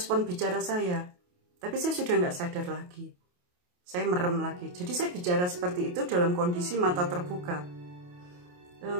bicara saya. Tapi saya sudah nggak sadar lagi. Saya merem lagi. Jadi saya bicara seperti itu dalam kondisi mata terbuka.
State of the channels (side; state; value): left; late; 28 ms